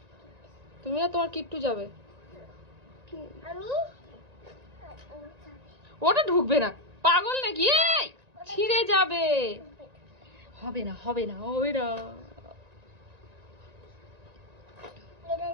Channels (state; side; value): late; left; 1.9 ms